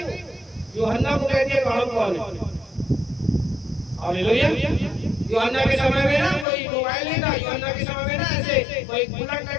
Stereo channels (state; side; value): drops out; right; at 6.5 s